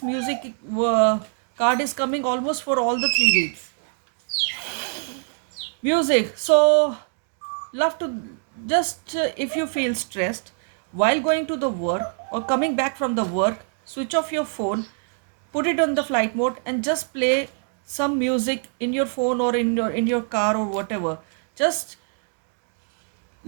music card is coming almost for all the three reads. Music. So love to Just if you feel stressed while going to the work or coming back from the work, switch off your phone, put it on the flight mode, and just play some music in your phone or in your car or whatever. Just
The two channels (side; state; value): left; silent; 62 dB below the other